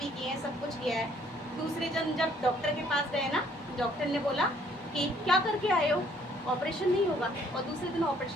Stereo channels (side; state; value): both; normal; correlation 0.62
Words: भी किए हैं, सब कुछ किया है। दूसरे दिन जब डॉक्टर के पास गए ना, डॉक्टर ने बोला कि क्या करके आए हो, ऑपरेशन नहीं होगा। और दूसरे दिन